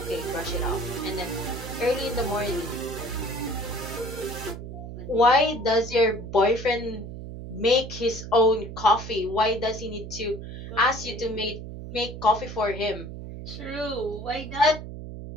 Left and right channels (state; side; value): noise; right; hum, 10 dB below the sound